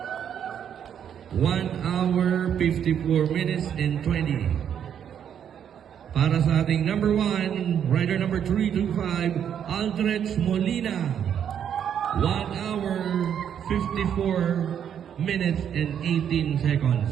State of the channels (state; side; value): quieter; left; 8.8 dB